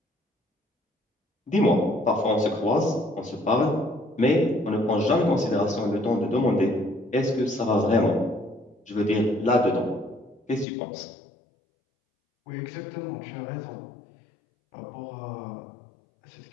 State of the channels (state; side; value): drops out; right; at 10.7 s